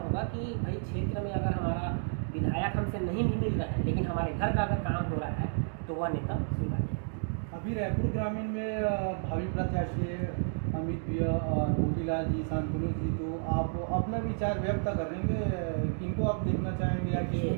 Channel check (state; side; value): silent; left; digital silence